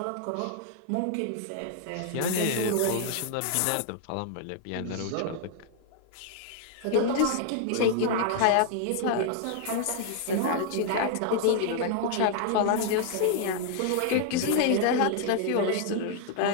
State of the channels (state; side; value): different; both; correlation -0.01